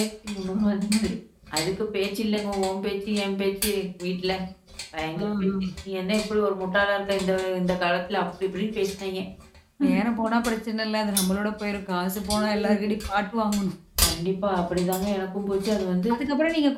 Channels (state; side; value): identical; both; correlation 1.00